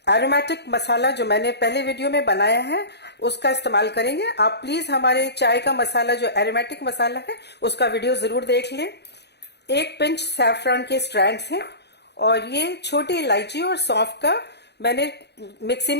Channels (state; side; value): late; right; 0.49 ms